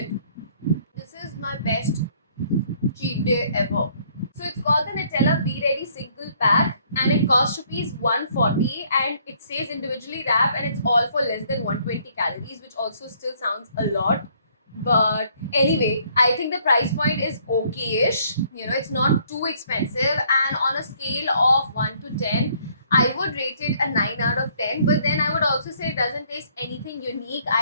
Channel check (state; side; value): inverted; both; correlation -0.64